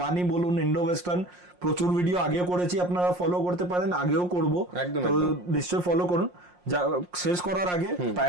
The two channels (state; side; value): late; left; 5.6 ms